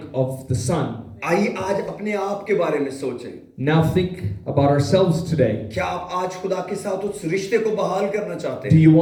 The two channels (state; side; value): identical; both; correlation 1.00